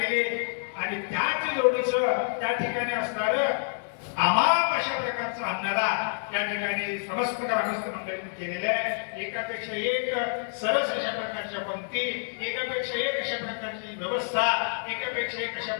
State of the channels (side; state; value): right; silent; digital silence